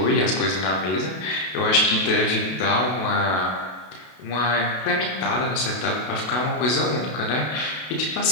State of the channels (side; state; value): right; late; 32 ms